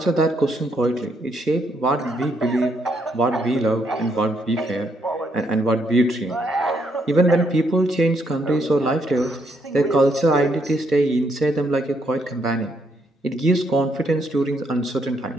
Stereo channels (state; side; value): normal; both; correlation 0.74